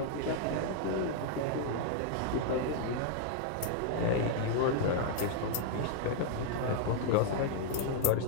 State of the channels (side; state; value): both; different; correlation -0.01